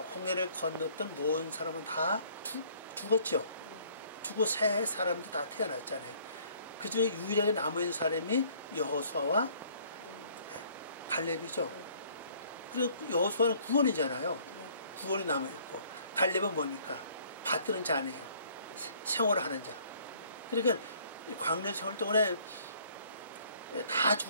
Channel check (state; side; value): inverted; both; correlation -0.59